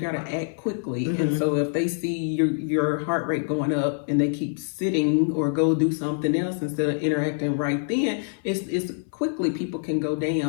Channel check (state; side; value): silent; right; 59 dB below the other